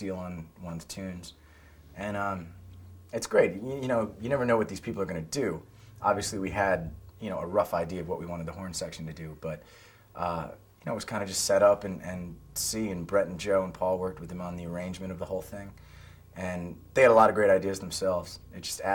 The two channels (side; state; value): both; identical; correlation 1.00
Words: on one of the tunes. And it's great. You know, you never know what these people are going to do. Obviously, we had, you know, a rough idea of what we wanted the horn section to do, but you know, it was kind of just set up and see, and Brett and Joe and Paul worked with them on the arrangement of the whole thing. And they had a lot of great ideas themselves. It just